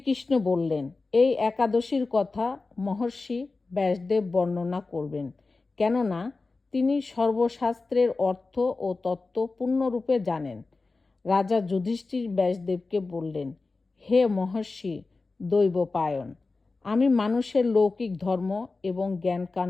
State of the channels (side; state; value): right; quieter; 3.7 dB